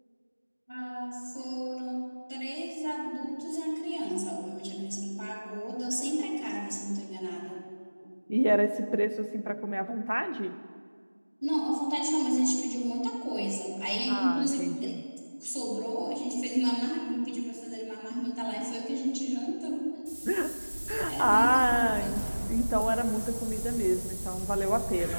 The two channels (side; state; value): both; inverted; correlation -1.00